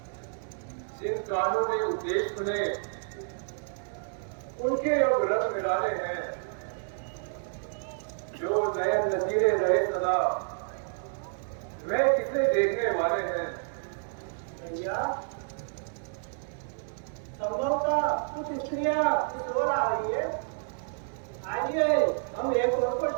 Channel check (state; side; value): silent; left; digital silence